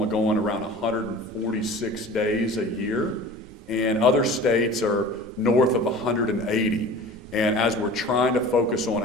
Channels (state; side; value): normal; both; correlation 0.40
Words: going around 146 days a year, and other states are north of 180. And as we're trying to focus on